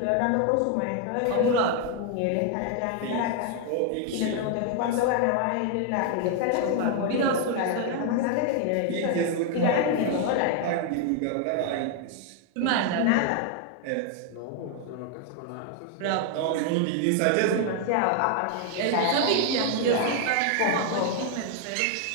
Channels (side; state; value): both; different; correlation 0.00